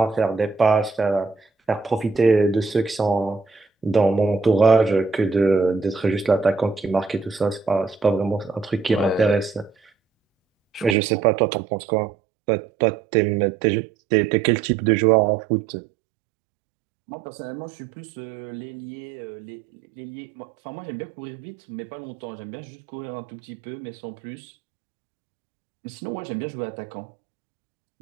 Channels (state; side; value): drops out; left; at 11.0 s